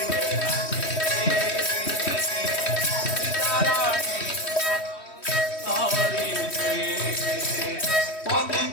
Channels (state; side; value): late; right; 3.1 ms